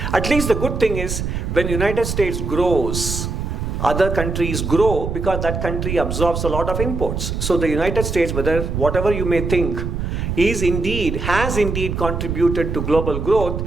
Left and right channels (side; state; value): right; noise; rumble, 3 dB below the sound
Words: At least the good thing is, when the United States grows, other countries grow because that country absorbs a lot of imports. So the United States, whatever you may think, has indeed contributed to global